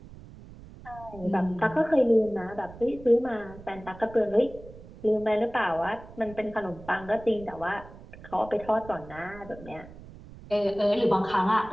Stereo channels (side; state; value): right; noise; rumble, 18 dB below the sound